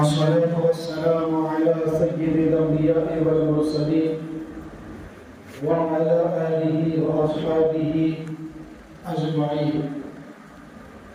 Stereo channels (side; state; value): both; identical; correlation 1.00